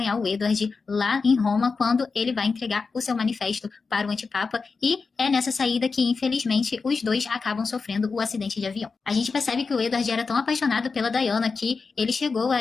o Edward lá em Roma quando ele vai entregar o seu manifesto para o antipapa e é nessa saída que, infelizmente, os dois acabam sofrendo o acidente de avião. A gente percebe que o Edward era tão apaixonado pela Diana que ele chegou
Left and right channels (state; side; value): quieter; right; 4.6 dB